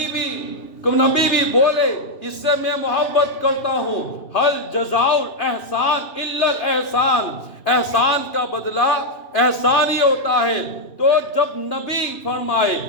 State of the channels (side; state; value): right; late; 2.9 ms